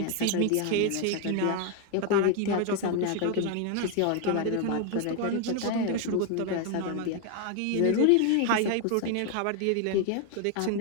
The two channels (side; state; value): both; different; correlation 0.01